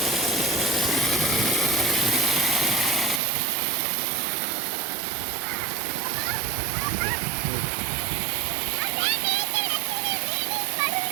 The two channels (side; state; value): left; drops out; at 3.2 s